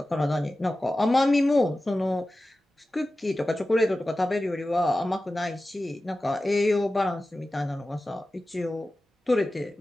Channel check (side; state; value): both; normal; correlation 0.95